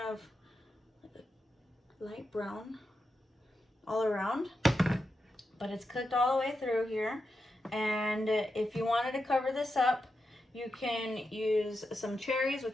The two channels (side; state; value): both; normal; correlation 0.88